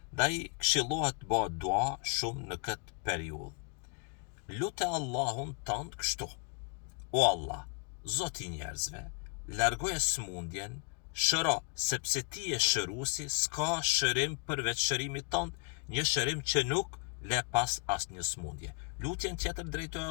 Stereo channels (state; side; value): quieter; right; 37.0 dB